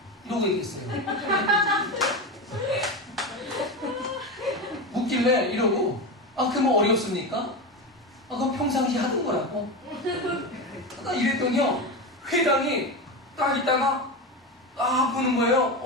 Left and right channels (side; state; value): both; normal; correlation 0.19